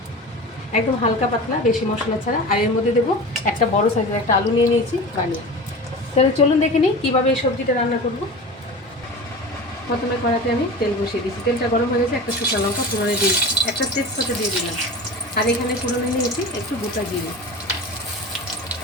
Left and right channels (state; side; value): normal; both; correlation 0.32